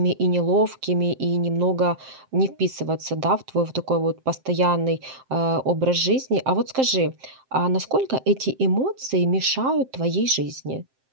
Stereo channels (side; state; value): left; late; 7.6 ms